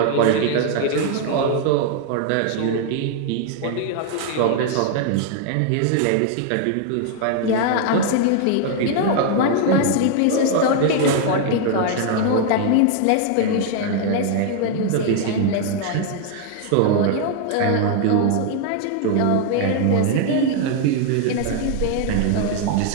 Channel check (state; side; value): different; both; correlation 0.00